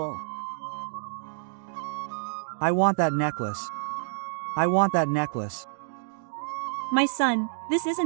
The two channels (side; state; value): left; silent; digital silence